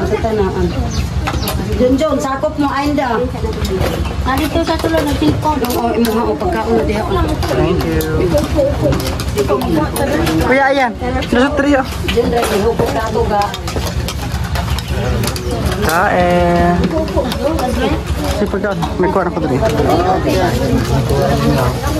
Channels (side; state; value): both; identical; correlation 1.00